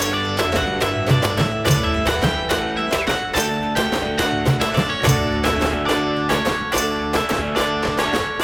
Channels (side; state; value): left; noise; hum, 24 dB below the sound